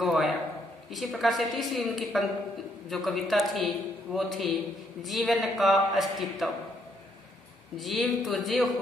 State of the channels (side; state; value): both; normal; correlation 0.71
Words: गवाया। इसी प्रकार से तीसरी उनकी जो कविता थी वो थी जीवन का अस्तित्व। जीव तुझे